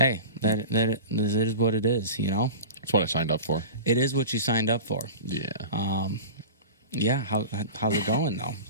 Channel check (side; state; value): both; inverted; correlation -0.32